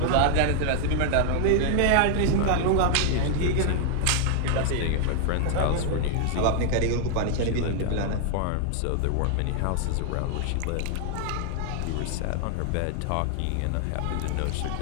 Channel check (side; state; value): both; different; correlation 0.00